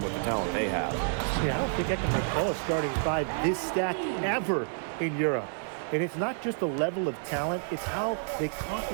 with the talent they have. Yeah, I don't think I can recall a starting five this stacked ever in Europe. And it's not just the level of talent, it's how they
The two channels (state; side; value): silent; left; digital silence